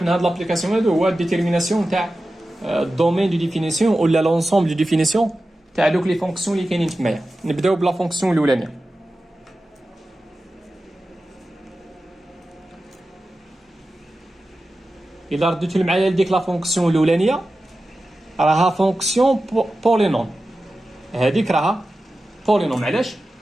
من هاد لابليكاسيون هادو هو الديتيرميناسيون تاع الدومين دو ديفينيسيون ولا لونسومبل دو ديفينيسيون تاع دوك لي فونكسيون اللي كاينين تمايا. نبداو بلا فونكسيون الاولانيه. الا رديتو معايا لديك لا فونكسيون الاولانيه راها فونكسيون بولينوم. هذيك راها بولينوم. علاش؟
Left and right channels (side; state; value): both; normal; correlation 0.93